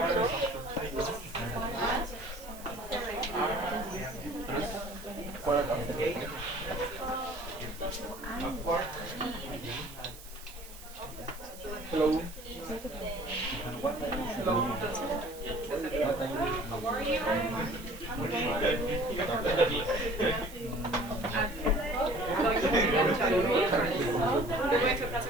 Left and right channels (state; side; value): noise; right; hiss, 17 dB below the sound